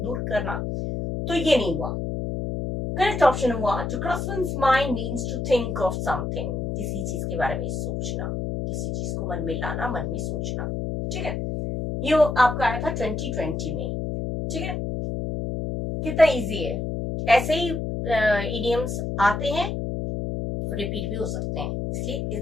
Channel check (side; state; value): left; noise; hum, 3 dB below the sound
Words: दूर करना, तो ये नहीं हुआ। करेक्ट ऑप्शन हुआ to cross one's mind means to think of something, किसी चीज के बारे में सोचना, किसी चीज को मन में लाना, मन में सोचना। ठीक है, ये आपका आया था 2020 में। ठीक है, कितना इजी है। ऐसे ही इडियम्स आते हैं, रिपीट भी हो सकते हैं, इसलिए